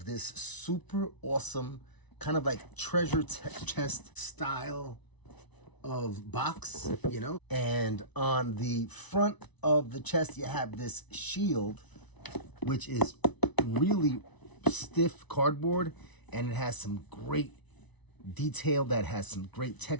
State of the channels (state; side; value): late; right; 1.0 ms